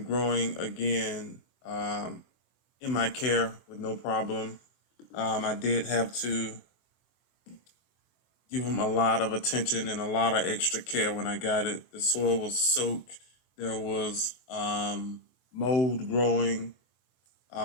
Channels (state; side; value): late; right; 24 ms